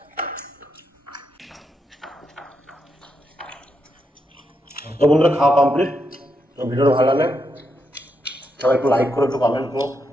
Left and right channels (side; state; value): both; normal; correlation 0.82